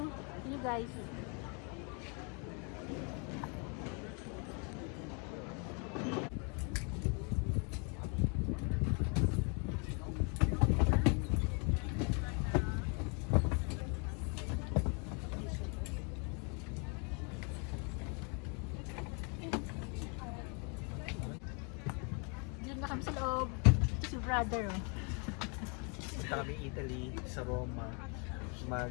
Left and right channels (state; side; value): quieter; right; 35.7 dB